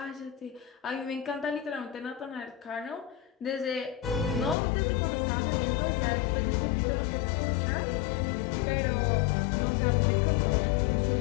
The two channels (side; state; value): right; drops out; at 4.5 s